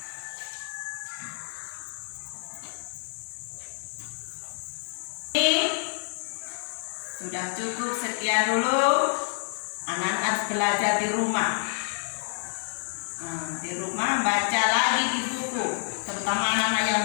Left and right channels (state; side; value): silent; right; 59 dB below the other